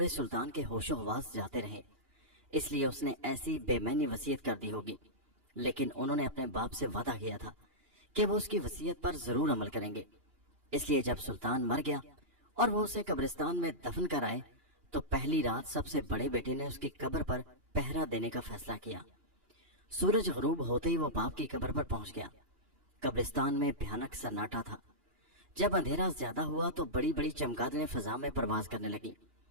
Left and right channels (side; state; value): left; late; 2.9 ms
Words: سلطان کے ہوش و حواس جاتے رہے، اس لیے اس نے ایسی بے معنی وصیت کر دی ہوگی، لیکن انہوں نے اپنے باپ سے وعدہ کیا تھا کہ وہ اس کی وصیت پر ضرور عمل کریں گے۔ اس لیے جب سلطان مر گیا اور وہ اسے قبرستان میں دفن کر آئے تو پہلی رات سب سے بڑے بیٹے نے اس کی قبر پر پہرا دینے کا فیصلہ کیا۔ سورج غروب ہوتے ہی وہ باپ کی قبر پر پہنچ گیا۔ قبرستان میں بھیانک سناٹا تھا۔ جب اندھیرا زیادہ ہوا تو بڑی بڑی چمگادڑیں فضا میں پرواز کرنے لگیں۔